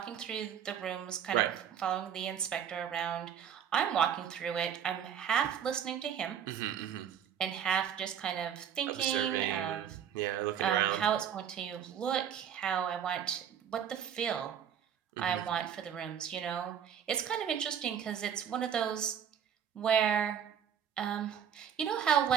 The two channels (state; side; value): quieter; left; 8.7 dB